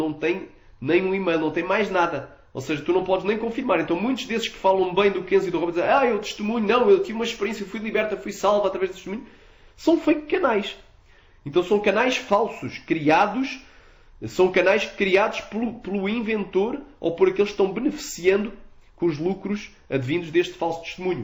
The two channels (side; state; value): both; identical; correlation 1.00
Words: tem nem um e-mail, não tem mais nada. Ou seja, tu não podes nem confirmar. Então muitos desses que falam bem do Kenzo e do Robert dizem, eu testemunho, não, eu tive uma experiência, fui liberta, fui salva através do testemunho, são fake canais. Então são canais falsos, criados, são canais criados pelo inventor ou por aqueles que estão beneficiando com os lucros advindos deste falso